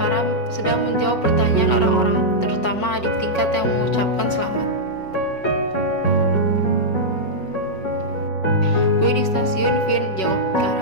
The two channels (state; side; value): late; right; 5.4 ms